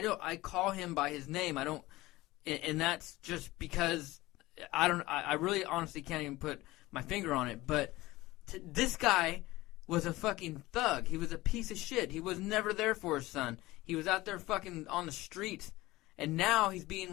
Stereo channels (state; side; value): quieter; right; 18.8 dB